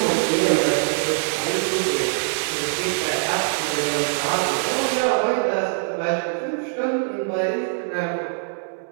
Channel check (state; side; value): silent; left; 64 dB below the other